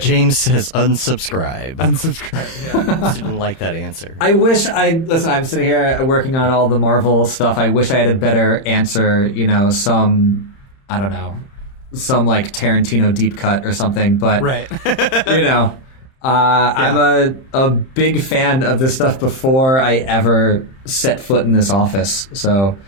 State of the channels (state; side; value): late; right; 30 ms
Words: James says unsubscribe. Unsubscribe. Yeah. Didn't like that answer. I wish I'm sitting here working on all the Marvel stuff. I wish I had a better answer, some like Tarantino deep cut or something, but right. I'm a big fan of this stuff before I ever set foot in this office. So,